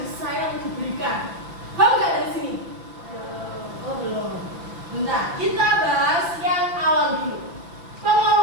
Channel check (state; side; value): late; left; 5.9 ms